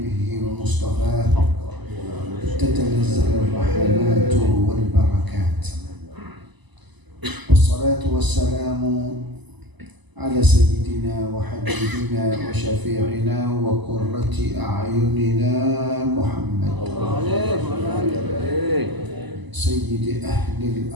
ومصطفاه تتنزل الرحمات والبركات والصلاة والسلام على سيدنا وحبيبنا وشفيعنا وقرة أعيننا محمد سيد أهل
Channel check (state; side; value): late; left; 1.0 ms